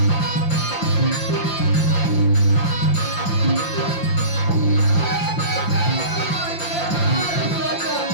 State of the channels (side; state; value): right; late; 5.8 ms